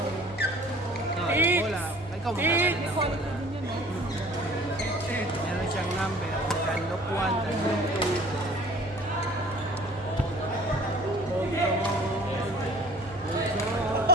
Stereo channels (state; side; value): normal; both; correlation 0.49